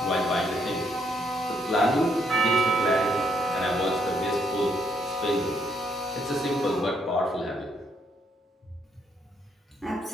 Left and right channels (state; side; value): normal; both; correlation 0.72